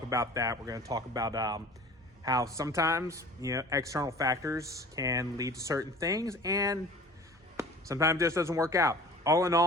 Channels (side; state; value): both; normal; correlation 0.45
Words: about that. We're going to talk about how sometimes, external factors can lead to certain things, and sometimes it just doesn't work out. All in